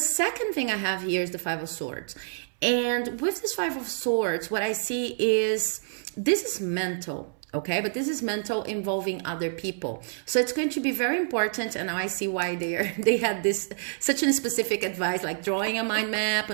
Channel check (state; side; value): silent; left; 60 dB below the other